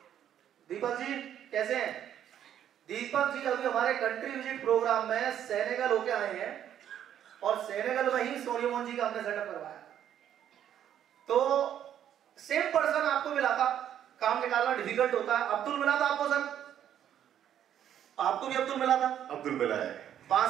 दीपक जी कैसे हैं? दीपक जी अभी हमारे कंट्री विजिट प्रोग्राम में सेनेगल होके आए हैं, और सेनेगल में ही सोनिया मोहन जी का हमने सेटअप करवाया। तो सेम पर्सन आपको मिला था, काम निकालना डिफिकल्ट होता है। अब्दुल मिला था आपको सर? आपको भी अब्दुल मिला था? अब्दुल मिला है।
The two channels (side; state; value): left; quieter; 10.2 dB